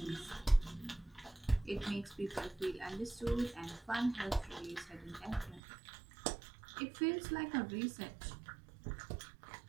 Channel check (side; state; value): left; drops out; at 5.6 s